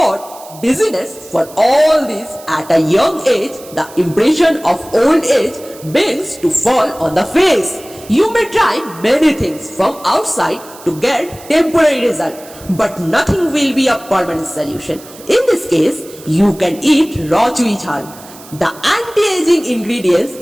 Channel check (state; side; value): noise; right; hiss, 20 dB below the sound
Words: busyness for all this at a young age, the impression of old age begins to fall on the face. You may try many things from outside to get temporary result, but nothing will be a permanent solution. In this case, you can eat raw Chui Jhal. The anti-aging ingredients